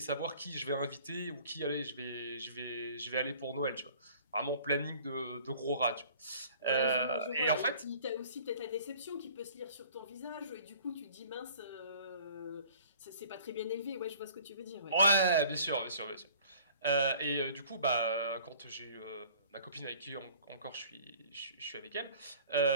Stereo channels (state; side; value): inverted; both; correlation -0.51